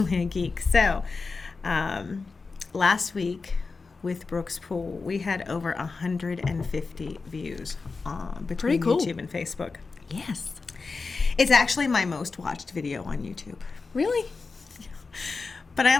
a geek. So, last week with Brooks Pool, we had over 150 views between YouTube and Facebook. Yes. It's actually my most watched video on YouTube. Really? But I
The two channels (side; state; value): right; quieter; 4.3 dB